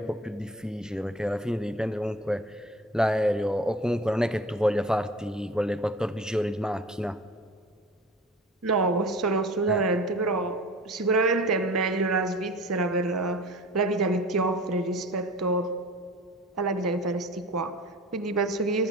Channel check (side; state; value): both; normal; correlation 0.41